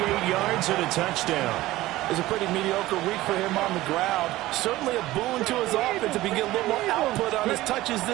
yards, and a touchdown. was a pretty mediocre week for him on the ground. Certainly a boon to his offense if he can get a little more output on his touches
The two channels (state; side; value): quieter; left; 17.1 dB